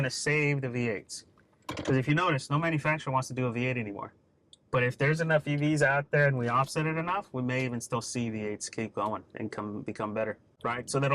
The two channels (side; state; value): both; identical; correlation 1.00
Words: to save the V8s. Because if you notice, no manufacturer wants to do a V8 anymore. But if there's enough EVs out there and we offset it enough, we may even still see V8s keep going and become better, right? So that